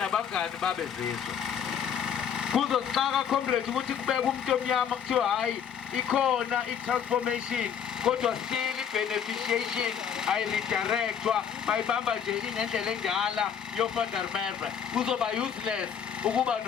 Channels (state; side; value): quieter; right; 8.0 dB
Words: babezizwe. Kuzosixaka comrade ukuthi kubeke umuntu omnyama kuthiwa hayi ikhona i-transformation, kodwa still i-beneficiation ayiridirectwa bayibamba nje ingendlela enjala yoFandermerwe. Kuzoba useless ukuba